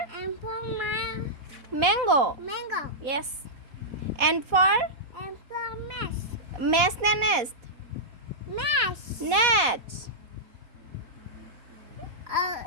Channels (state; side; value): late; left; 4.1 ms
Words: M for mango mango. Yes N for M for mesh. Mesh নে nest Mesh. Net